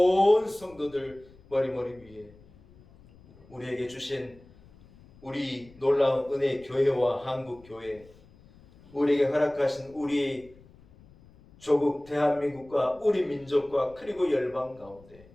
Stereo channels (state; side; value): noise; left; rumble, 25 dB below the sound